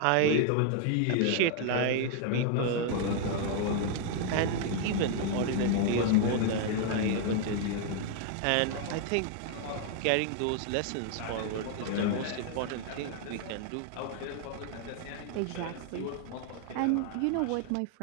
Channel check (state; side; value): different; both; correlation 0.00